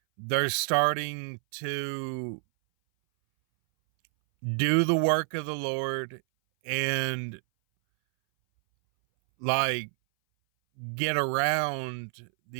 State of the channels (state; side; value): silent; left; 59 dB below the other